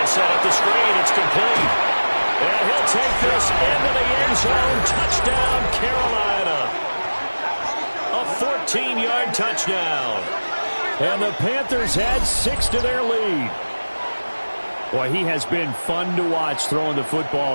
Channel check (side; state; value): both; inverted; correlation -1.00